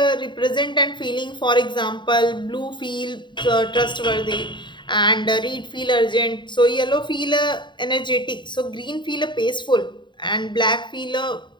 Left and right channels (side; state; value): right; late; 0.23 ms